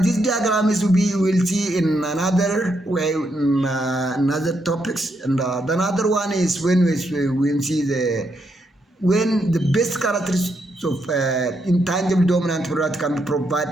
This diagram is we will see in another way in another topics, and the another one is when we see when the best characteristics So intangible dominant product can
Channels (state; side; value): normal; both; correlation 0.79